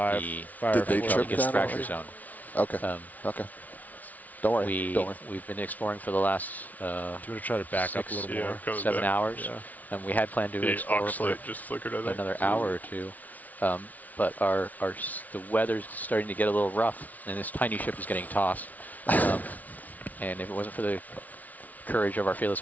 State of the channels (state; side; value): late; right; 0.075 ms